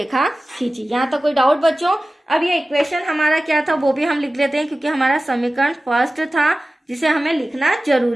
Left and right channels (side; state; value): both; normal; correlation 0.96